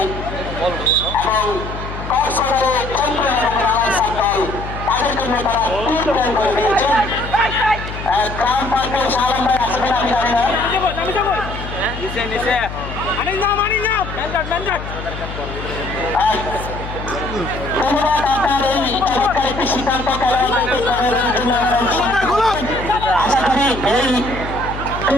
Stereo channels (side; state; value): left; noise; hum, 9 dB below the sound